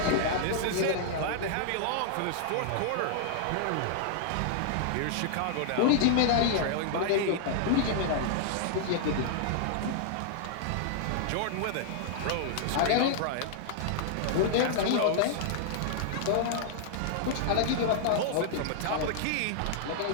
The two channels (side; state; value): both; different; correlation -0.01